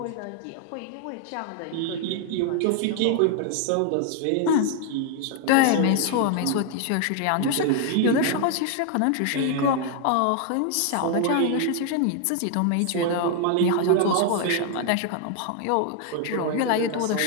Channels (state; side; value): different; both; correlation 0.00